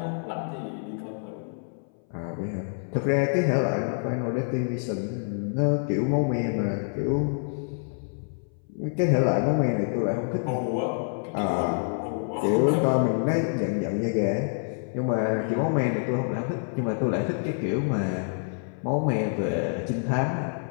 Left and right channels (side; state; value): right; silent; 58 dB below the other